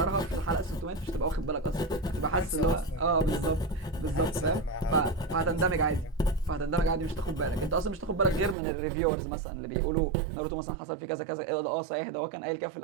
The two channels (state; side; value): drops out; left; at 8.6 s